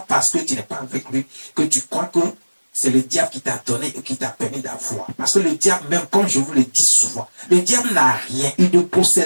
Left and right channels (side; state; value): both; inverted; correlation -1.00